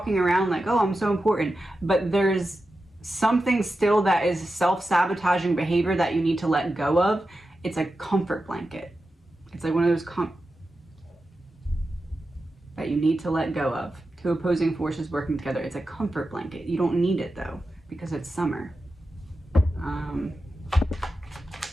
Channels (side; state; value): both; normal; correlation 0.91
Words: around like, oh, I'm so important, but there's something still that is self-sabotaging behavior that you need to let go of. It's a comfort blanket. It's like one of those that you need to let go of. Two opposing forces working together. It's a comfort blanket. You don't need it though, because it's summer.